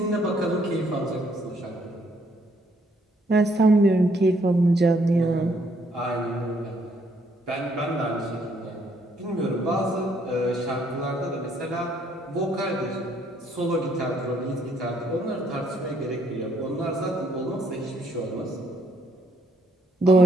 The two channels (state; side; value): normal; both; correlation 0.69